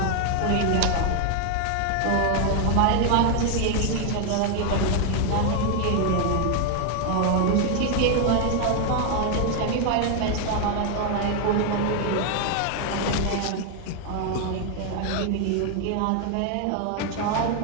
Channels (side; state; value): both; different; correlation 0.01